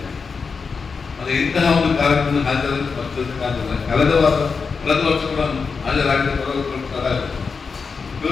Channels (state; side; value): quieter; right; 5.1 dB